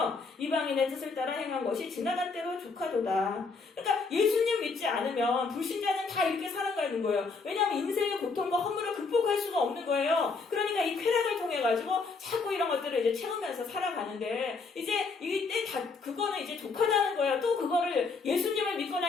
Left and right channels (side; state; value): right; quieter; 4.4 dB